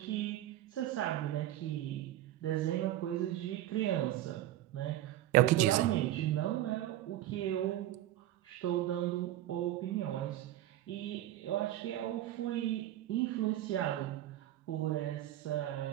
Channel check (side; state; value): left; quieter; 13.6 dB